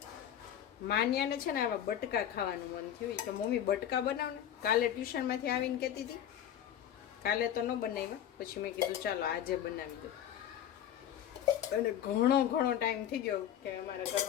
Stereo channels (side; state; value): right; quieter; 10.4 dB